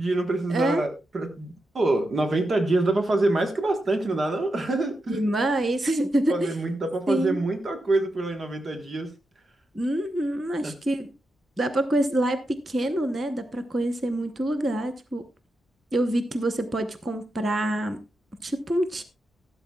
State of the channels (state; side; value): normal; both; correlation 0.87